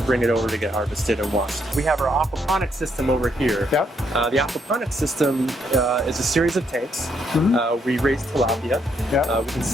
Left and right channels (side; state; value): both; normal; correlation 0.74